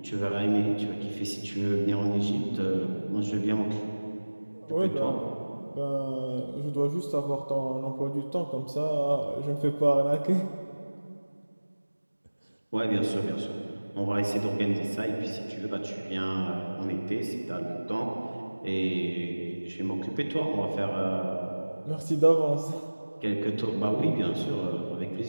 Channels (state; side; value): inverted; both; correlation -1.00